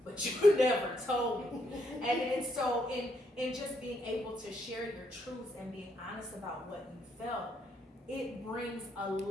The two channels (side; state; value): both; normal; correlation 0.75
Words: But you never told me. And so in just being able to share your truths and being honest about what you felt, it brings a